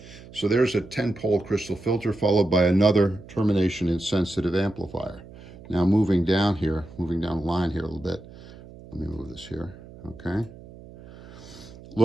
So there's a 10-pole crystal filter followed by another termination insensitive amplifier. Now moving down the line here a little bit. Let me move this here, okay?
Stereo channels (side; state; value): right; noise; hum, 18 dB below the sound